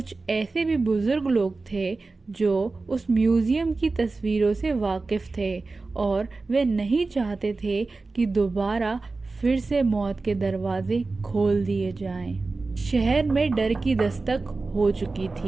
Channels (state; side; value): quieter; left; 3.7 dB